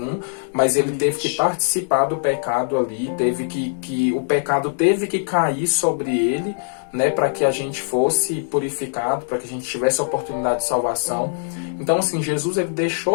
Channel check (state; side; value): silent; right; digital silence